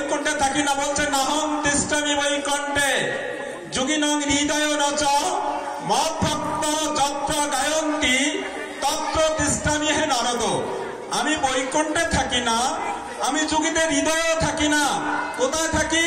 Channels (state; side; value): identical; both; correlation 1.00